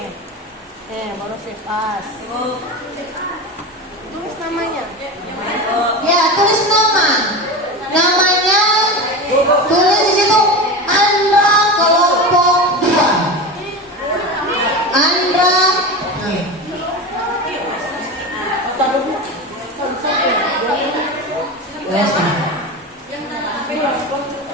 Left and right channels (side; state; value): both; normal; correlation 0.25